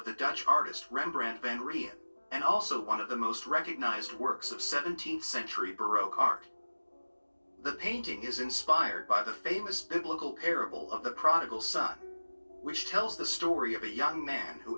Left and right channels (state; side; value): inverted; both; correlation -1.00